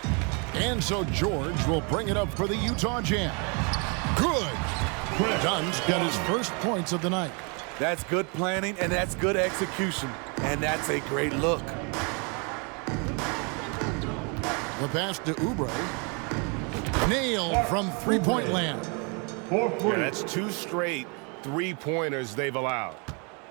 And so George will bring it up for the Utah Jazz. Good. Dunn's got his first points of the night. That's good planning, and that's good execution. And that's a great look. The pass to Oubre. Nailed from three-point land. Yeah, that's 2 straight three-pointers they've allowed.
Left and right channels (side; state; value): left; quieter; 33.9 dB